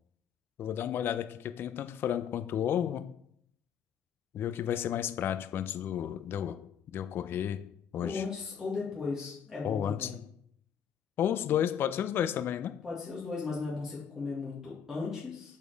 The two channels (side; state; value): right; quieter; 8.2 dB